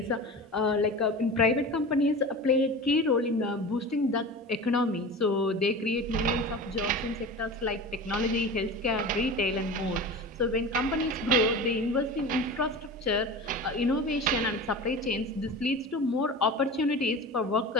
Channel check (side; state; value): both; normal; correlation 0.32